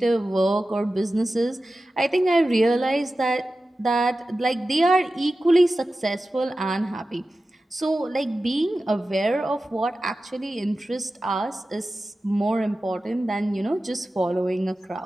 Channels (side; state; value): both; normal; correlation 0.94